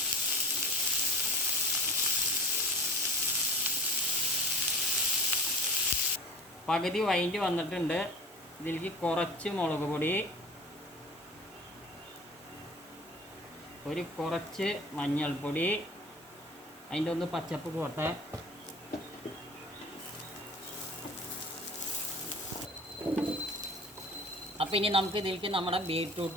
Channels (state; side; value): normal; both; correlation 0.40